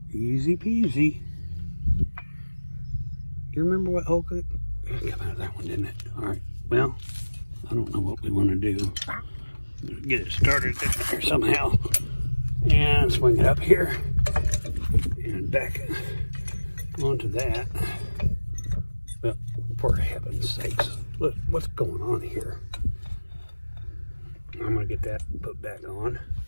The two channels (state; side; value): inverted; both; correlation -1.00